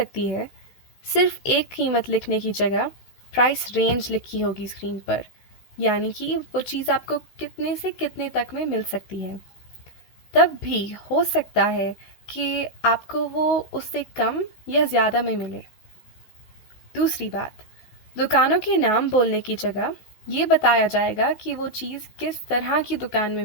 है, सिर्फ एक कीमत लिखने की जगह प्राइस रेंज लिखी होगी स्क्रीन पर, यानी कि वो चीज़ आपको कितने से कितने तक में मिल सकती है। तब भी हो सकता है कि आपको वो उससे कम या ज़्यादा में मिले। दूसरी बात, दुकानों के नाम बोलने की जगह ये बताया जाएगा कि वो चीज़ किस तरह की दुकान में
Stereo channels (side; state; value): right; late; 16 ms